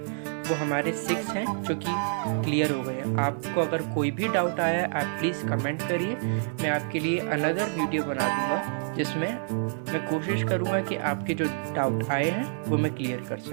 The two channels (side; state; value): left; silent; 60 dB below the other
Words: वो हमारे 6 हैं जो कि क्लियर हो गए। आपको अगर कोई भी डाउट आया है आप प्लीज़ कमेंट करिए, मैं आपके लिए अनदर वीडियो बना दूंगा जिसमें मैं कोशिश करूंगा कि आपके जो डाउट आए हैं वो मैं क्लियर कर